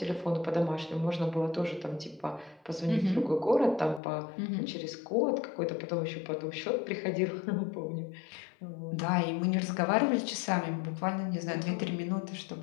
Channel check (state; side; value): drops out; right; at 4.0 s